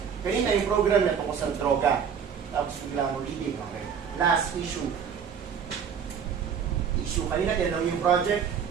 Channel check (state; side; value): quieter; left; 7.3 dB